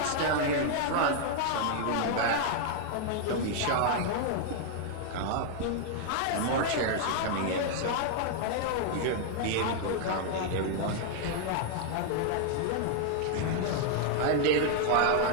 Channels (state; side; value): different; both; correlation 0.00